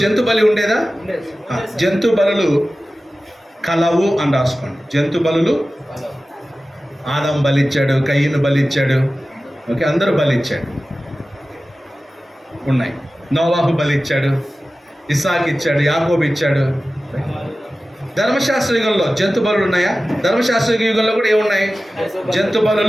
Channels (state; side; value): normal; both; correlation 0.95